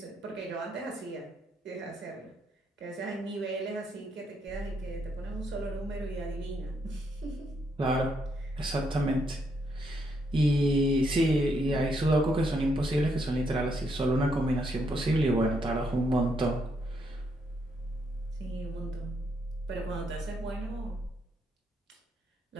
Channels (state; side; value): normal; both; correlation 0.76